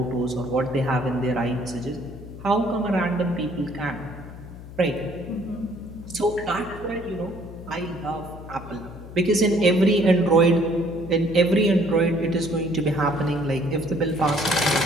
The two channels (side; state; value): left; noise; hum, 14 dB below the sound